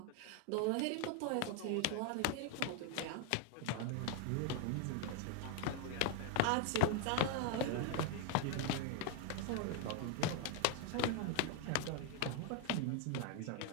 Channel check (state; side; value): different; both; correlation 0.00